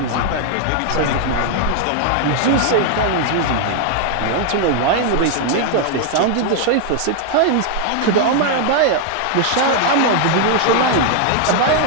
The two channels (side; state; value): both; different; correlation 0.00